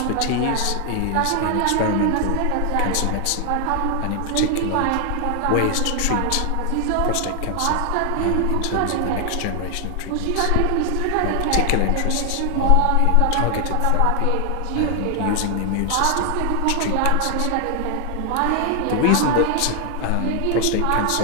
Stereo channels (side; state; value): both; different; correlation 0.00